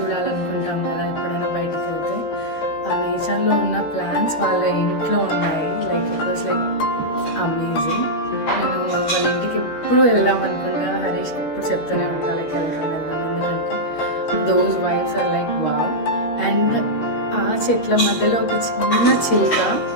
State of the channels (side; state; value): right; late; 13 ms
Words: కదా ఎప్పుడైనా బయటకు వెళ్తే. ఆ నేచర్లో ఉన్న ప్లాంట్స్ వాళ్ళ ఇంట్లో ఉన్నాయి. Like it was like amazing. నేను వాళ్ళ ఇంటికి ఎప్పుడు వెళ్దాం అనుకుంటా. హరీష్ ఎప్పుడు చెప్తూనే ఉంటా లైక్ వెళ్దాం ఎందుకంటే those vibes are like wow. And ఆ చెట్ల మధ్యలో ఒక చిన్న చిలుక,